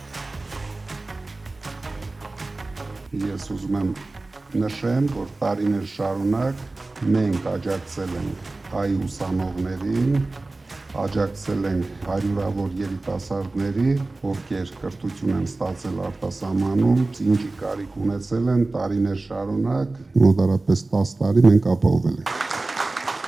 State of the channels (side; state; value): left; quieter; 3.2 dB